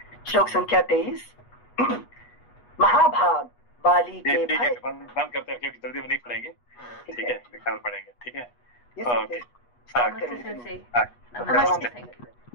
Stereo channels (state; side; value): late; right; 8.3 ms